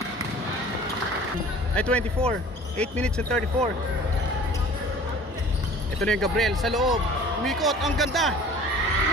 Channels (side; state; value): both; normal; correlation 0.46